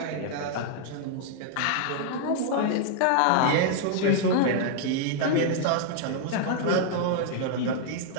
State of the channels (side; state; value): both; different; correlation -0.01